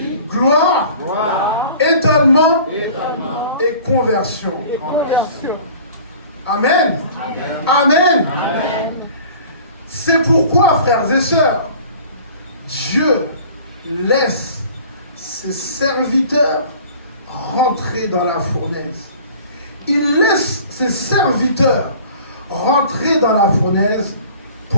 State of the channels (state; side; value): inverted; both; correlation -0.46